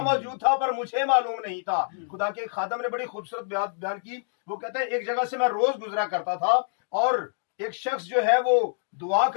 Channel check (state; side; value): silent; right; digital silence